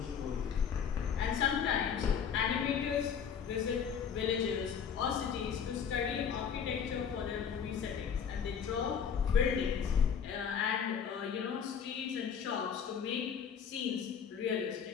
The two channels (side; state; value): right; quieter; 7.3 dB